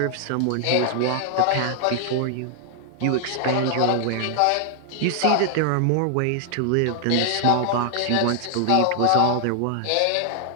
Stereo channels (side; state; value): both; different; correlation 0.00